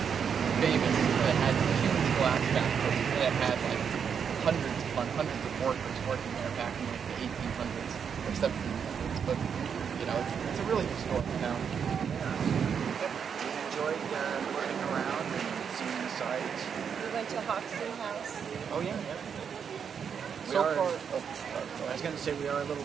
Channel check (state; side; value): quieter; left; 7.1 dB